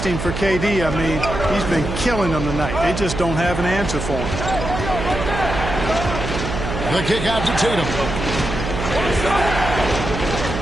for KD. I mean, he's been killing them tonight. They just don't have an answer for him. The kick out to Tatum.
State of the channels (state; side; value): noise; right; hum, 5 dB below the sound